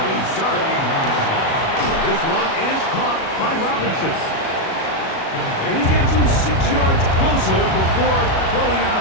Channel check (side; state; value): right; late; 37 ms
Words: Dart. This one is caught by Robinson. And he gets him 6 yards closer before going out